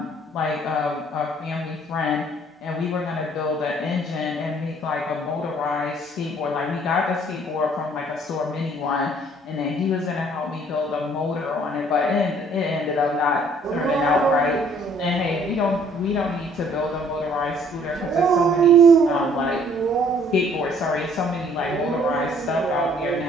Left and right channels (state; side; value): normal; both; correlation 0.59